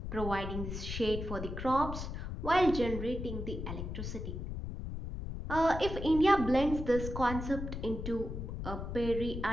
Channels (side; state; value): left; noise; rumble, 6 dB below the sound